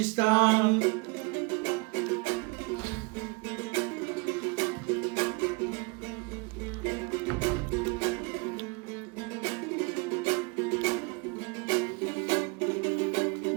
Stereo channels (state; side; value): quieter; left; 29.1 dB